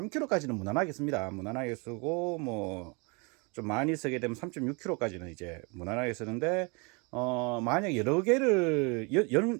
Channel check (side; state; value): left; quieter; 31.0 dB